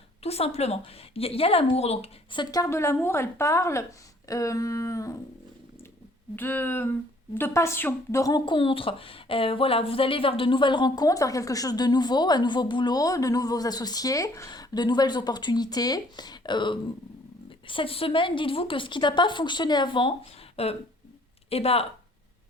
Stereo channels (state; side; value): normal; both; correlation 0.59